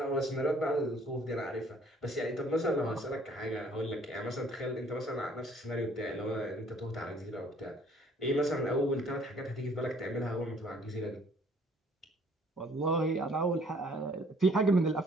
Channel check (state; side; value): normal; both; correlation 0.58